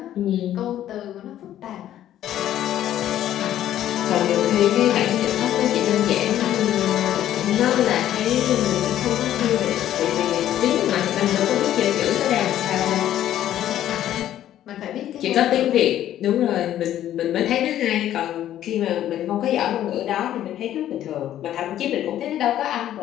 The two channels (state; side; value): quieter; right; 12.0 dB